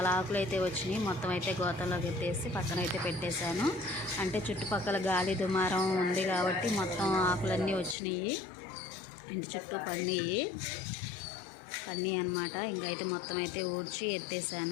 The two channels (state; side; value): drops out; right; at 8.0 s